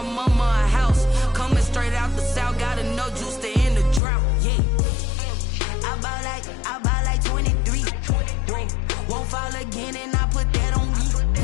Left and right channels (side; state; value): right; drops out; at 4.0 s